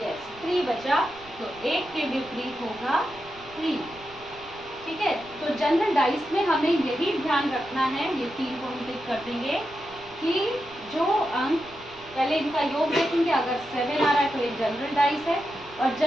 3 बचा, तो 1 के विपरीत होगा 3। ठीक है, तो जनरल डाइस में हमें यही ध्यान रखना है, ये 3 को हम टिक कर देंगे कि जो अंक, पहले इनका योग देखेंगे, अगर 7 आ रहा है तो एक जनरल डाइस है, और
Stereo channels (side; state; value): right; noise; rumble, 23 dB below the sound